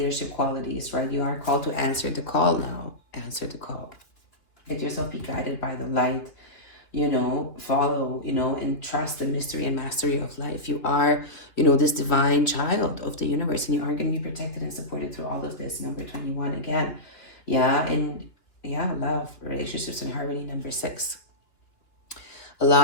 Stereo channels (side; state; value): right; late; 3.1 ms